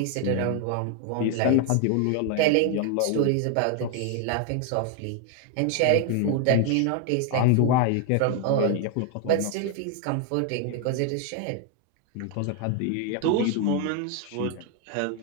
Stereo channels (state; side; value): different; both; correlation 0.00